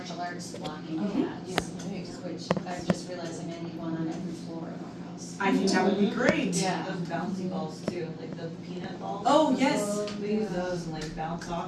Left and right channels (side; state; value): both; identical; correlation 1.00